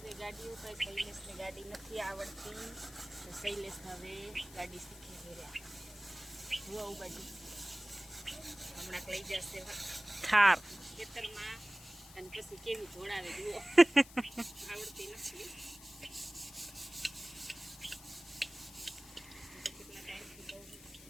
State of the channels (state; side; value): noise; left; hiss, 18 dB below the sound